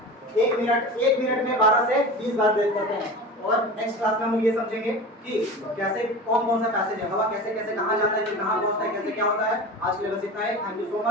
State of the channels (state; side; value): normal; both; correlation 0.32